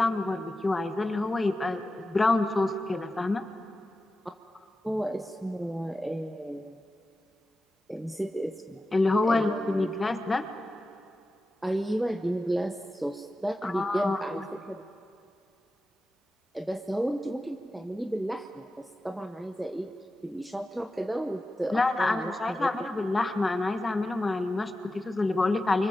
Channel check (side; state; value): both; normal; correlation 0.93